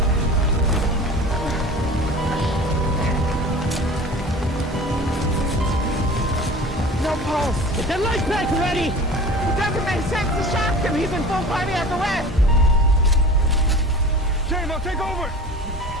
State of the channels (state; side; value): normal; both; correlation 0.39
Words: No pulse. Get that life back ready! It doesn't make sense to shock him. He's in full cardiac arrest. James, take over!